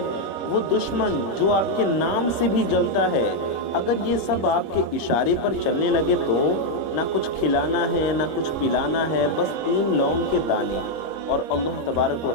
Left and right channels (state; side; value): late; right; 25 ms